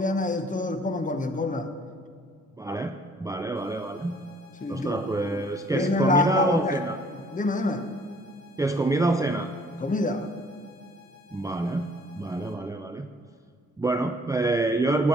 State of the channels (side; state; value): both; normal; correlation 0.58